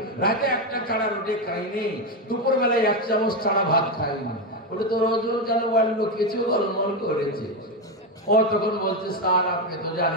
রাতে 1টা ছাড়া রুটি খাইনি, দুপুর বেলায় 1 চামচ ছাড়া ভাত খাইনি। বলে তোর ওজন কেন বাড়লো? কিছু গোলমাল করেছে। ও তখন বলছে, স্যার আপনি তো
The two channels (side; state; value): both; normal; correlation 0.10